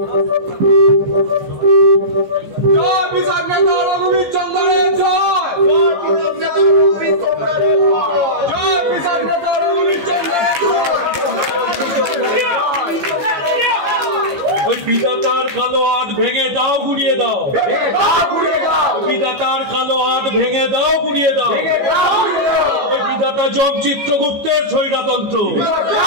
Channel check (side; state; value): left; late; 14 ms